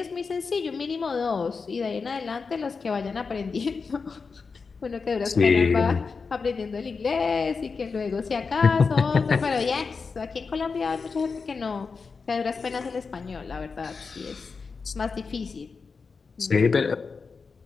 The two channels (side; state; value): right; quieter; 4.9 dB